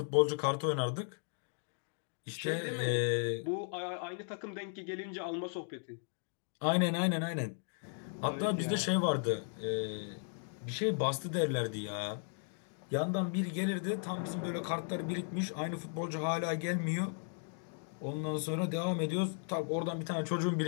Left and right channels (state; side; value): silent; right; 54 dB below the other